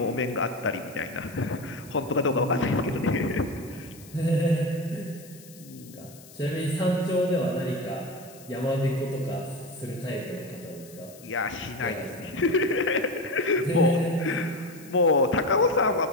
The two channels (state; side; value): noise; left; hiss, 21 dB below the sound